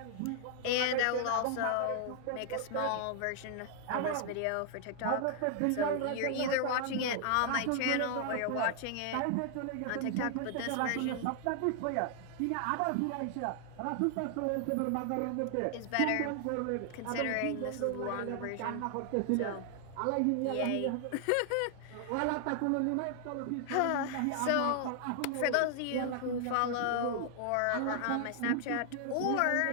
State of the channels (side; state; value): both; different; correlation 0.00